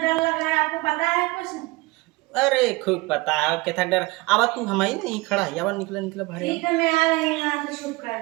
लग रहा है आपको पता है कुछ? अरे खूब पता है क्या डर। आवा तू हमारी नहीं खड़ा है, आवा निकला भाई। ठीक है मैं आ रही हूँ यहाँ से, छुप कर,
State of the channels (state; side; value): quieter; left; 23.4 dB